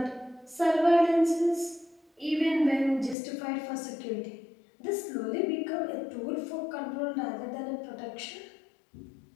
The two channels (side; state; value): right; drops out; at 3.2 s